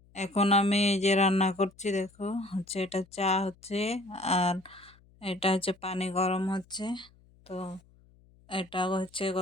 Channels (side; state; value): left; noise; hum, 29 dB below the sound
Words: এখন আমি এই যে রান্না করছি, দেখো হচ্ছে এটা চা হচ্ছে, আর এটা হচ্ছে পানি গরম হচ্ছে। তো এটা হচ্ছে